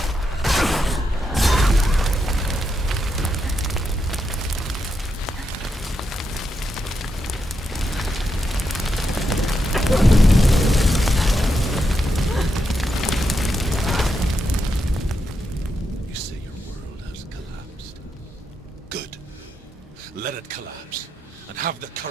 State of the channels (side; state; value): both; normal; correlation 0.84